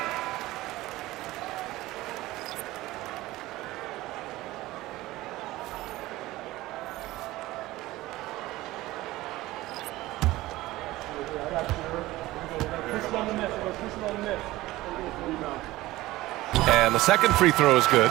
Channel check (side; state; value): left; quieter; 17.8 dB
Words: And the second free throw is good.